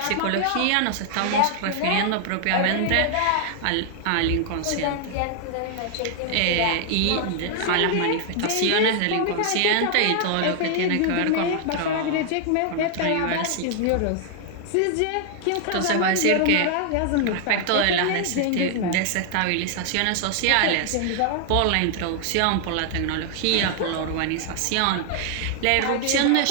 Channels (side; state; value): both; different; correlation 0.00